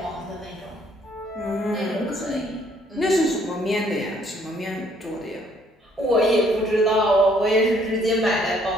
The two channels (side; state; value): both; normal; correlation 0.65